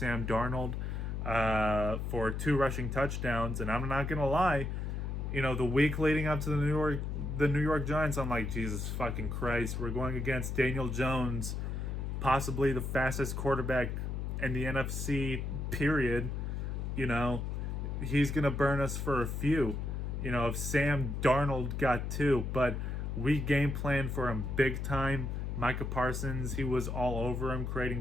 Darnold for 2 rushing touchdowns, and I'm not gonna lie. The week leading up to the New York Giants, I'm like, Jesus fucking Christ, we're going against Daniel Jones, possibly the fastest quarterback in the NFC, period. He's going to burn us for a few. If Sam Darnold got 2, but we game planned for him big time. Micah Parsons, he was all over him,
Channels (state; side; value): noise; left; hum, 3 dB below the sound